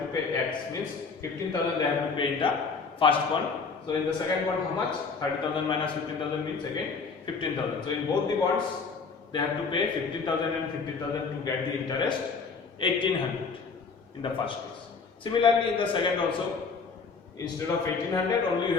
to pay? X means 15,000 they have to pay in the first bond. So in the second bond, how much? 30,000 minus 15,000 means again 15,000. So in both the bonds, they have to pay 15,000 and 15,000 to get the interest 1800 in the first case. Similarly, in the second also, instead of 1800, only you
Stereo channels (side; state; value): right; quieter; 4.9 dB